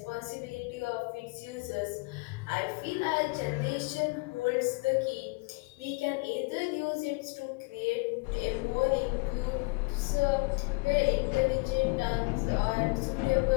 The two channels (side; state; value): right; quieter; 28.0 dB